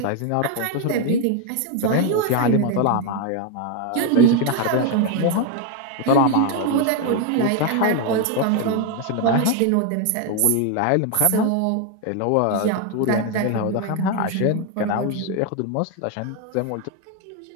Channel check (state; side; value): different; both; correlation 0.01